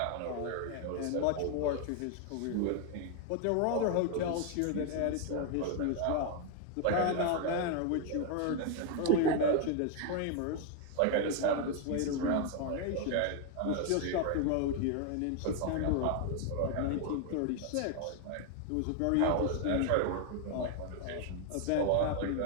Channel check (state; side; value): different; both; correlation 0.01